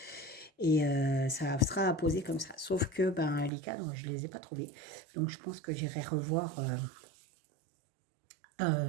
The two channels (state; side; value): drops out; left; at 3.5 s